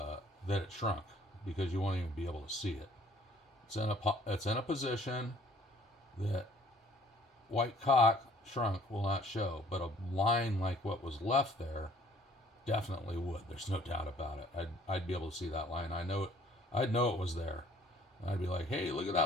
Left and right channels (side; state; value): both; normal; correlation 0.57